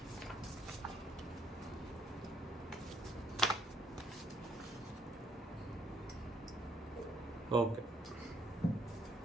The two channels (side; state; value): both; normal; correlation 0.69